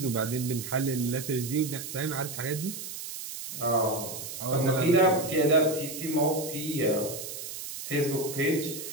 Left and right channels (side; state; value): right; noise; hiss, 8 dB below the sound